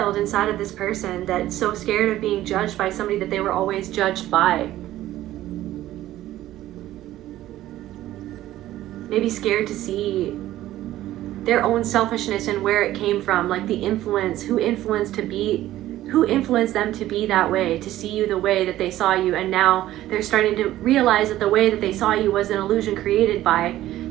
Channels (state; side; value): quieter; left; 14.3 dB